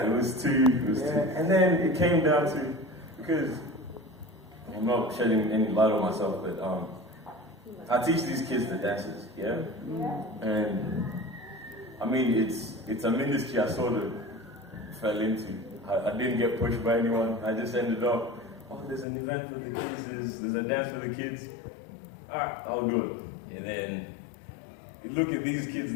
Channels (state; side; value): drops out; right; at 19.1 s